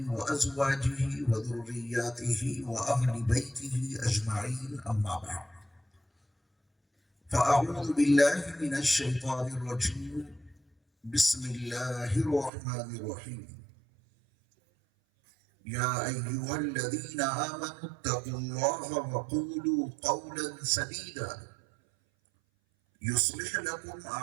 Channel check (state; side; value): drops out; left; at 12.5 s